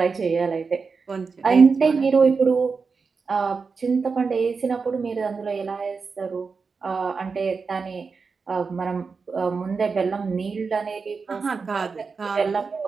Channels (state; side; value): quieter; left; 4.9 dB